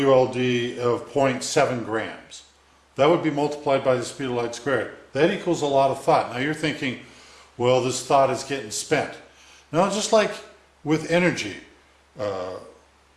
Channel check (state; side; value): identical; both; correlation 1.00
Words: of 0.7 grams. That would be multiplied by the speed of light squared. That equals a lot of thought. Now you're thinking, well, this thought is getting spent. No, just like with energy